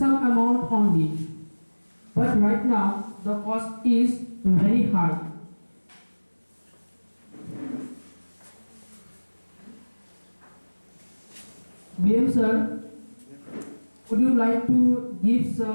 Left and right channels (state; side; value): inverted; both; correlation -1.00